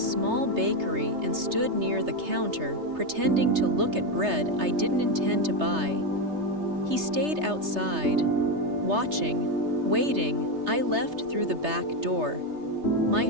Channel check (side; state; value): left; late; 3.3 ms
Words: bakery and stood near the counter, pretending to look at bread I didn't intend to buy. He stayed outside, watching, waiting. I left through the back door. My